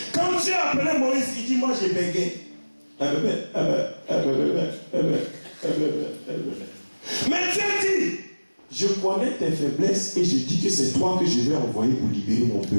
Quand Dieu a appelé Moïse, il dit moi j'ai bégué. Mais Dieu dit, je connais tes faiblesses et je dis que c'est toi que je vais envoyer pour libérer mon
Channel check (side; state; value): both; inverted; correlation -1.00